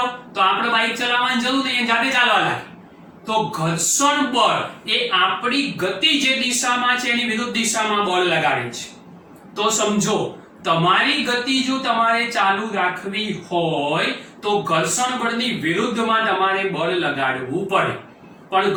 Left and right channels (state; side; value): identical; both; correlation 1.00